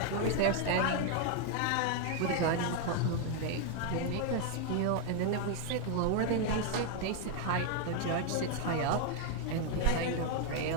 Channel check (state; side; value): different; both; correlation 0.00